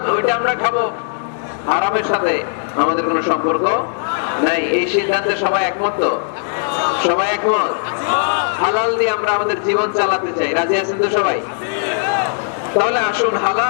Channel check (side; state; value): right; silent; digital silence